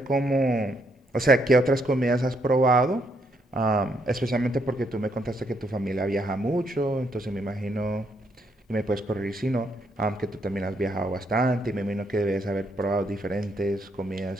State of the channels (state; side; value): normal; both; correlation 0.74